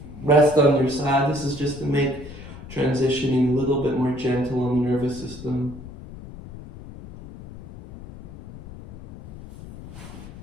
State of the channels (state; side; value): noise; left; rumble, 15 dB below the sound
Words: Rest on your side. This is just to make transitioning a little bit more gentle on the nervous system.